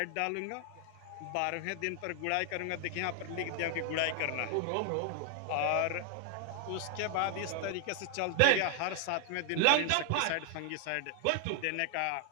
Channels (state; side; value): different; both; correlation 0.00